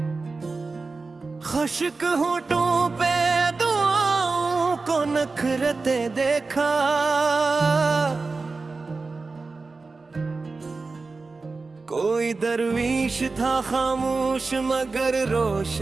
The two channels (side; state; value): left; quieter; 3.9 dB